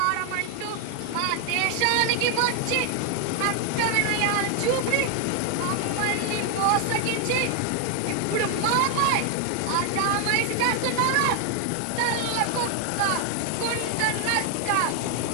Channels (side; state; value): both; different; correlation 0.00